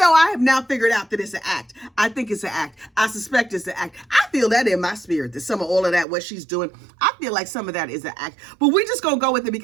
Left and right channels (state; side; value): drops out; left; at 6.1 s